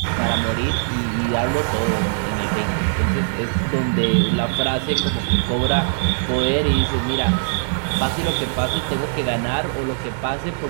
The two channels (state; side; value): silent; left; digital silence